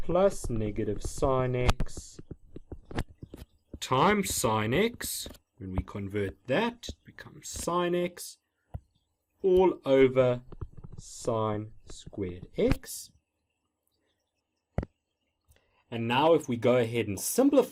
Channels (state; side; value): identical; both; correlation 1.00